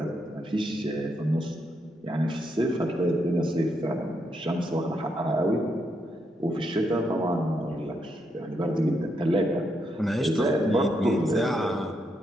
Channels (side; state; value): both; normal; correlation 0.80